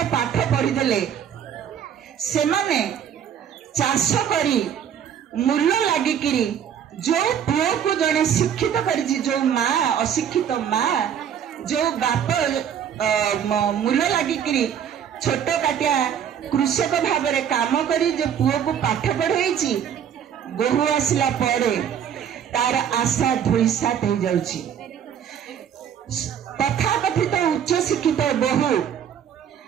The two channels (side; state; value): left; quieter; 8.7 dB